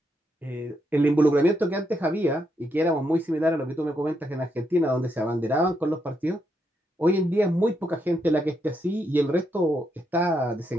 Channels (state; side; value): normal; both; correlation 0.79